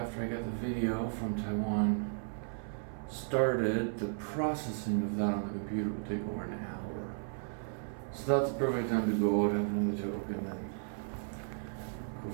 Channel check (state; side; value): silent; left; 55 dB below the other